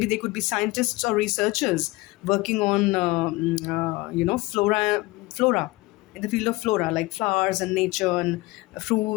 they could be scientists or researchers working on flora in the field of flora, like flowers and nature and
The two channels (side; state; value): right; quieter; 21.4 dB